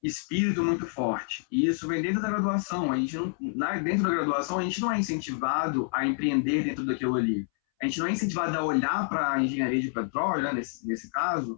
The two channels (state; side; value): silent; right; 59 dB below the other